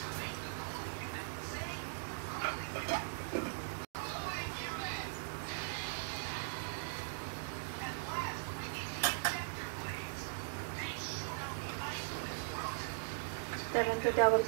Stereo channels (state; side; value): silent; left; digital silence